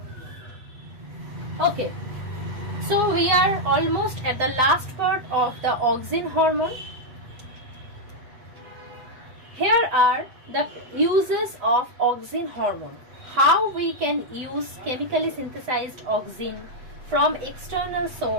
Okay. So we are almost at the last part of the auxin hormone. Here are the uses of auxin hormone. How we can use chemically synthesized auxin from external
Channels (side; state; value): left; late; 8.2 ms